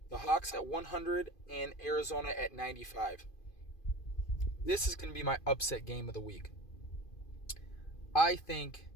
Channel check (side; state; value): right; late; 2.5 ms